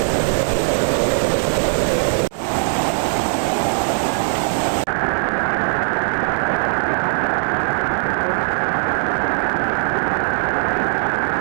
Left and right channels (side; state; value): left; silent; digital silence